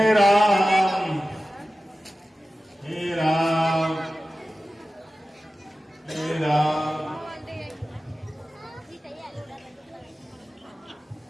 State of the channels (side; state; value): both; normal; correlation 0.95